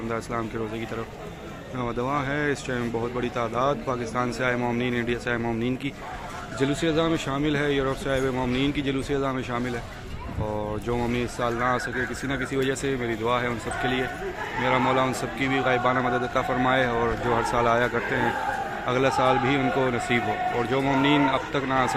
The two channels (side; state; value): both; identical; correlation 1.00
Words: علیہ وسلم کے روزے کی طرف رواں ہے. اس ٹائم بہت بڑی تعداد پاکستان سے آئے مومنین، انڈیا سے آئے مومنین کی جلوس عذاب میں شامل ہے. یورپ سے آئے ہوئے مومنین کی جلوس عذاب میں شامل ہے. اور جو مومنین اس سال نہ آ سکے کسی نہ کسی وجہ سے، میری دعا ہے ان سب کے لیے میرا مولا ان سب کی بھی غائبانہ مدد عطا فرمائے، اور جو ہر سال آیا کرتے ہیں اگلا سال بھی ان کو نصیب ہو. اور جو مومنین اب تک نہ آ